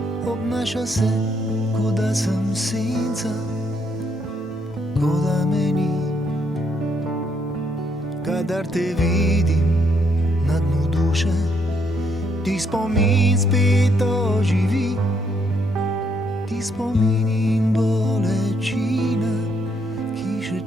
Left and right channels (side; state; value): both; normal; correlation 0.73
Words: Obnaša se, kot da sem senca, kot da me ni. Kadar te vidim na dnu duše, ti spomin spet oživi. Ti spomin in bolečina, ki še